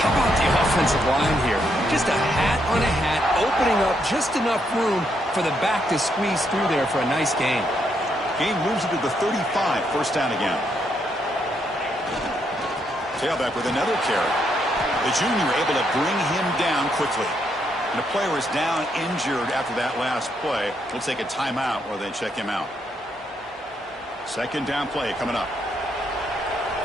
How about the offensive line here? Just a hat on a hat, opening up just enough room for the back to squeeze through there for a nice gain. Game moves it to the 35, first down again. Tailback with another carry. The junior able to bring him down quickly. And the player is down injured after that last play. We'll take a timeout while they check him out. Second down play coming up.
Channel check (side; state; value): both; normal; correlation 0.76